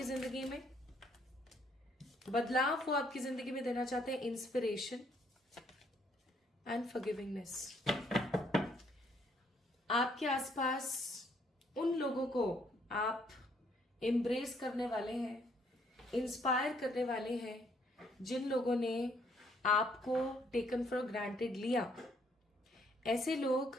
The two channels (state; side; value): normal; both; correlation 0.68